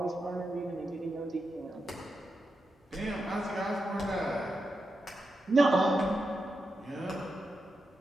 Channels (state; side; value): normal; both; correlation 0.87